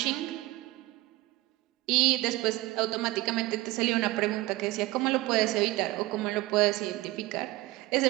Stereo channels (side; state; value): left; quieter; 19.1 dB